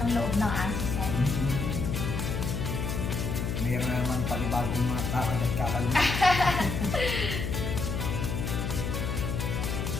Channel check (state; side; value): noise; left; hum, 2 dB below the sound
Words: loob ng aso sir. Mayroon na naman panibagong mga takad at kakalunod.